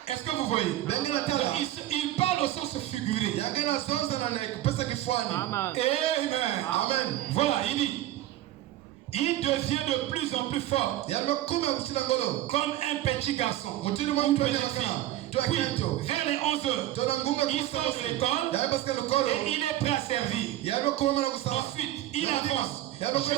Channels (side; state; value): left; quieter; 14.3 dB